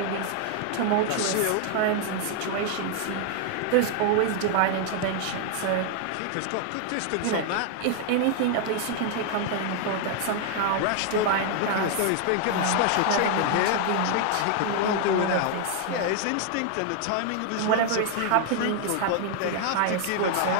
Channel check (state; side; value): different; both; correlation 0.00